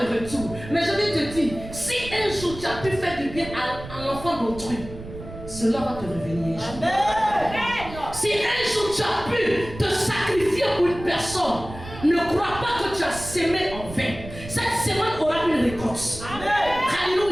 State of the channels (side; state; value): right; noise; rumble, 13 dB below the sound